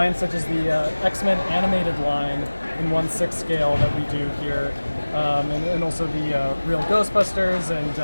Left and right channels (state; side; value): inverted; both; correlation -1.00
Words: such as the X-Men animated line in 1/6 scale that we do here, and also the real Ghostbusters and